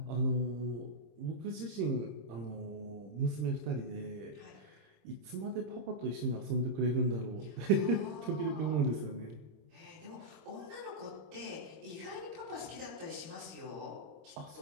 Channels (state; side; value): late; left; 26 ms